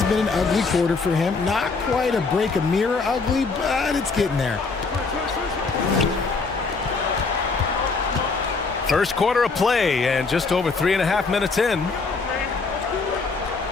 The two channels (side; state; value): right; quieter; 4.3 dB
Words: been an ugly quarter for him. Not quite a break a mirror ugly, but it's getting there. First quarter of play and just over 3.5 minutes in.